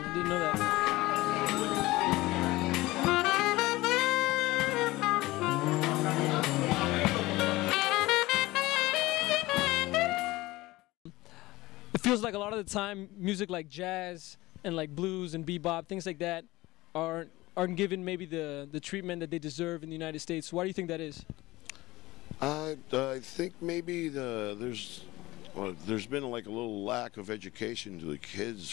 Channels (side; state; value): right; quieter; 19.3 dB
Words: I didn't know that. It feels like a lot of the time music like jazz and like blues and bebop, things like that, aren't given maybe the treatment that they deserve in the United States. Why do you think that is? I think maybe there's been like a little lack of education to the